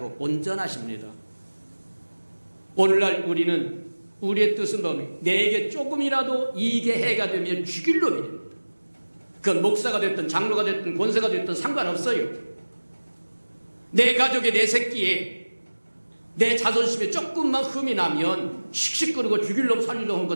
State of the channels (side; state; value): both; inverted; correlation -1.00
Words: 온전하십니다. 오늘날 우리는 우리의 뜻은 뭡니까? 내게 조금이라도 이익의 해가 되면 죽일 놈이 됩니다. 그건 목사가 됐든 장로가 됐든 권세가 됐든 상관없어요. 내 가족에 내 새끼에 내 자존심에 조금만 흠이 나면 씩씩거리고 죽일 놈 살릴 놈